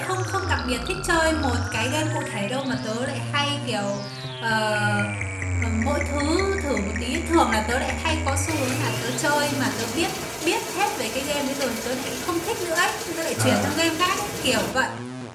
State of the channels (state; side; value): identical; both; correlation 1.00